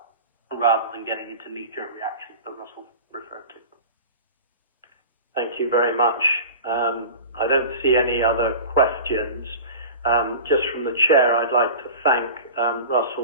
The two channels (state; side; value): inverted; both; correlation -0.36